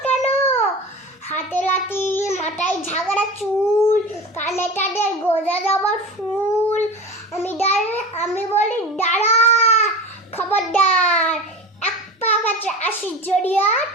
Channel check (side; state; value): both; normal; correlation 0.32